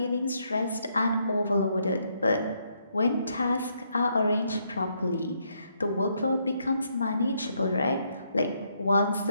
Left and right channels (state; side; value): inverted; both; correlation -0.75